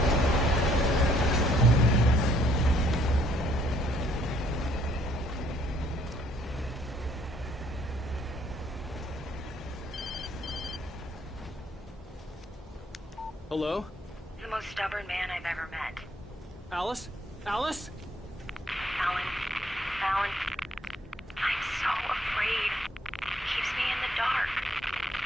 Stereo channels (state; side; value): normal; both; correlation 0.65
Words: Hello? The most stubborn man I've ever met. Alice? Alice? Alan. Alan. I'm so afraid. He keeps me in the dark.